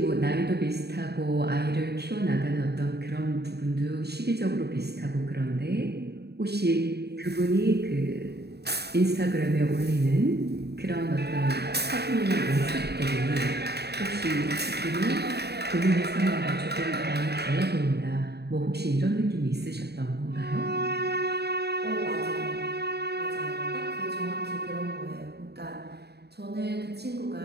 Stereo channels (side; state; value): left; late; 0.48 ms